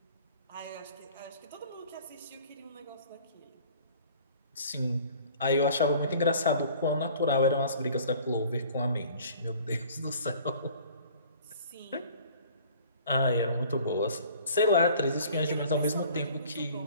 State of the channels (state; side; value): inverted; both; correlation -0.50